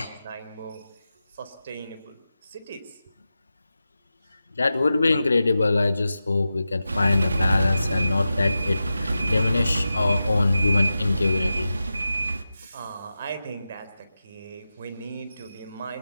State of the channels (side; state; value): both; inverted; correlation -0.92